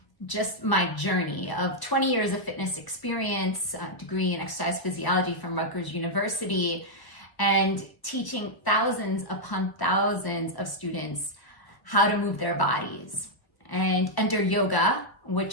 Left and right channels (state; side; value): late; right; 1.0 ms